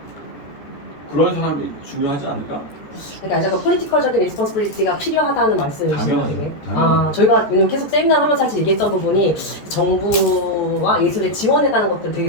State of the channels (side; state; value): right; late; 14 ms